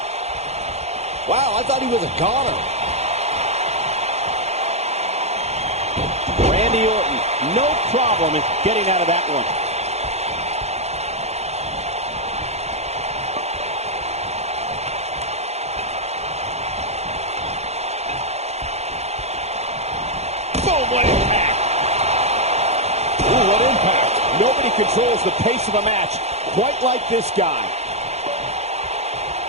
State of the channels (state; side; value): late; left; 0.31 ms